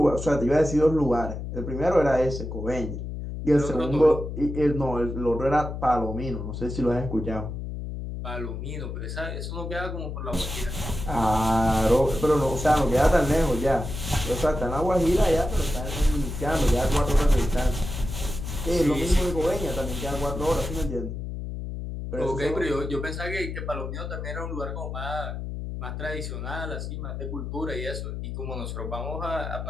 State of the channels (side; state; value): left; noise; hum, 6 dB below the sound